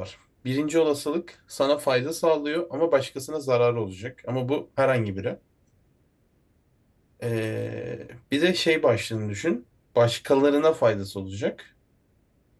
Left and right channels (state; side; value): identical; both; correlation 1.00